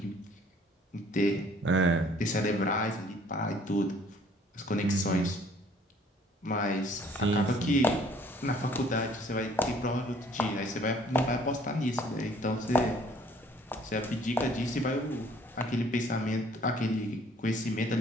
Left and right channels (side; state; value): both; normal; correlation 0.58